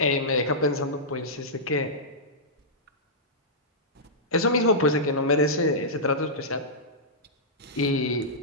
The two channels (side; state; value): both; normal; correlation -0.13